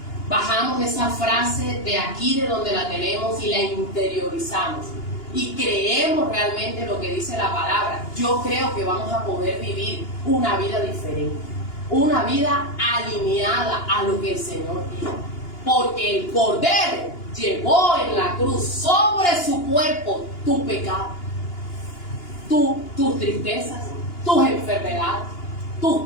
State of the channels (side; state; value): right; late; 2.9 ms